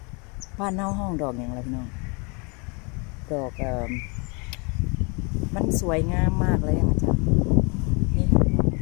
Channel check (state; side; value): quieter; right; 32.1 dB